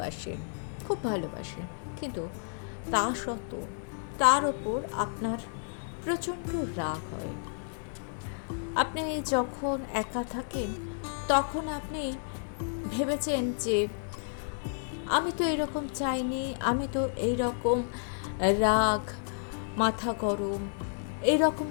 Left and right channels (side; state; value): right; silent; digital silence